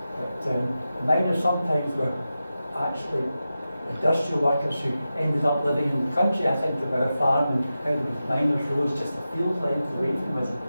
But the miners sometimes were actually industrial workers who ended up living in the country. I think of our farm and how there was miners' roads just a field length away from us,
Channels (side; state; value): both; inverted; correlation -0.92